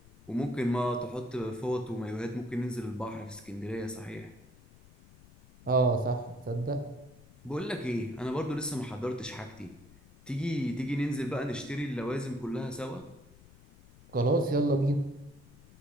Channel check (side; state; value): left; noise; rumble, 23 dB below the sound